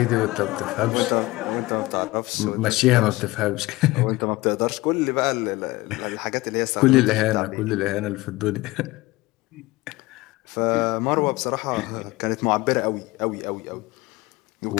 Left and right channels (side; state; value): right; quieter; 20.3 dB